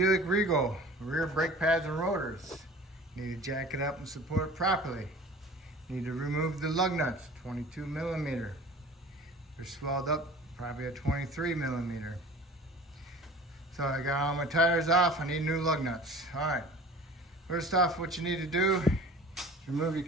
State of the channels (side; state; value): both; normal; correlation 0.43